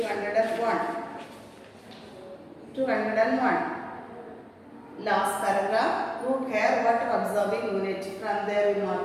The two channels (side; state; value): both; identical; correlation 1.00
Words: 201. Last paragraph. Root hair, water absorbing unit. From there we